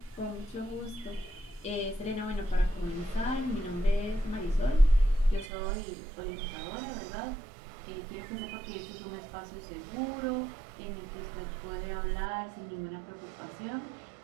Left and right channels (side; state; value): left; drops out; at 5.5 s